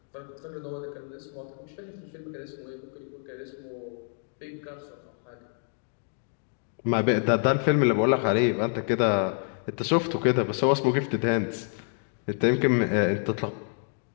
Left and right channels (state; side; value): silent; right; 60 dB below the other